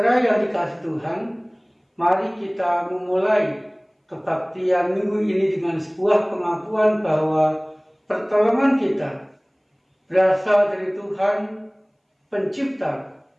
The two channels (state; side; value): identical; both; correlation 1.00